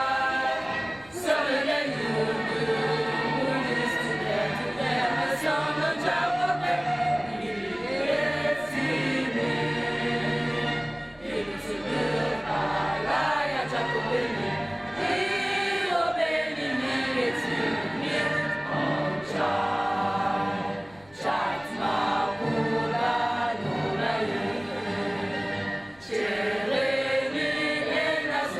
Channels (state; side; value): noise; left; rumble, 27 dB below the sound